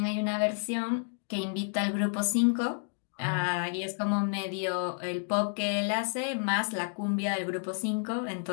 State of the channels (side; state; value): right; silent; digital silence